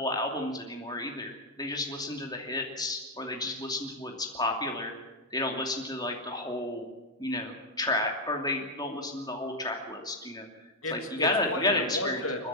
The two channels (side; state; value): both; normal; correlation 0.01